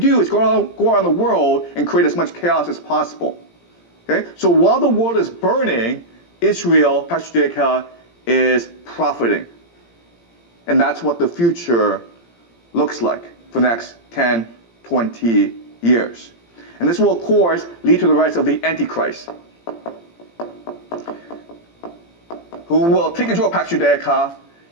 is go around the world and create as much chaos as possible. Okay? So while the world is burning, Israel, Pax Judaica, is profiting. And that's what the future looks like for the next 10, 20 years. And this will, of course, lead to the rise of the Antichrist, who will take control of Pax Judaica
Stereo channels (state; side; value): late; right; 17 ms